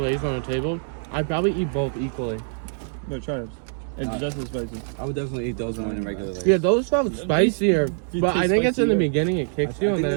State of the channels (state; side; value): silent; left; digital silence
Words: on the table, I'd probably eat both equally. No, try it. It's just as spicy. I would definitely eat those more than regular Lay's. Yeah, those felt spicier, These but I taste think it's in the spicier. beginning it kicks I you and think then